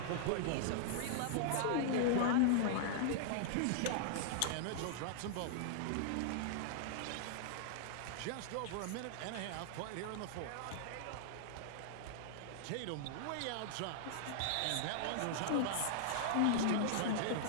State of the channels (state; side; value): different; both; correlation -0.01